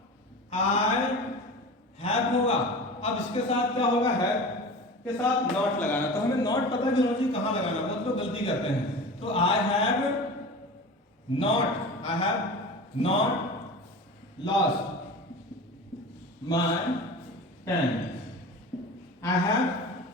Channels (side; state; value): both; normal; correlation 0.34